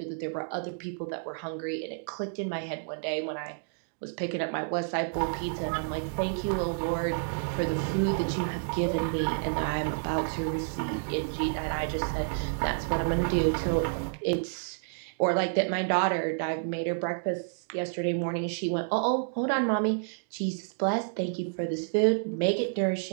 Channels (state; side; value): silent; left; digital silence